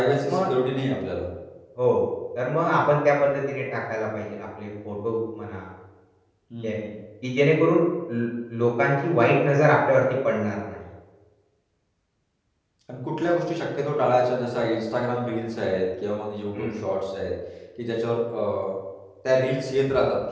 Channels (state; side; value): identical; both; correlation 1.00